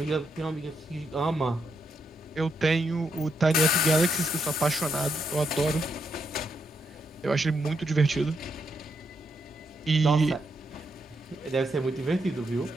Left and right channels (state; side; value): normal; both; correlation 0.79